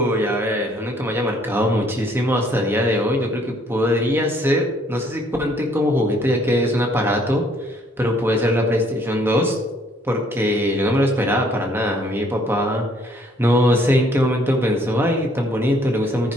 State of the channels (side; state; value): both; normal; correlation 0.63